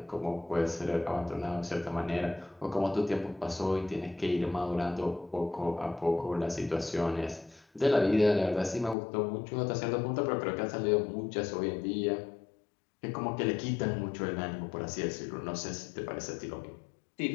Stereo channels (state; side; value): drops out; right; at 9.0 s